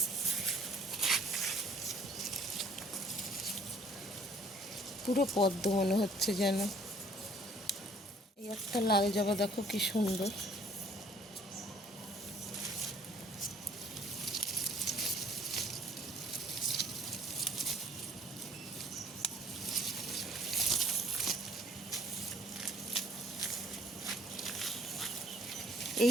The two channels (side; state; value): both; normal; correlation 0.58